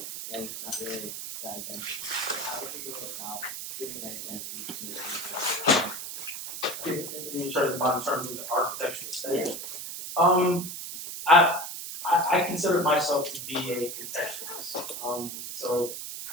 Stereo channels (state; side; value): noise; right; hiss, 7 dB below the sound